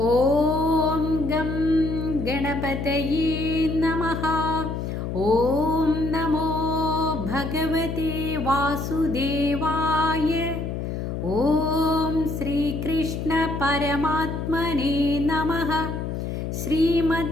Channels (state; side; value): noise; left; hum, 4 dB below the sound